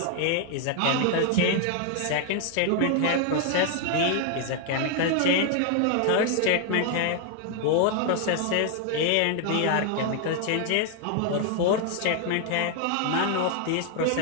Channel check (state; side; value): different; both; correlation 0.00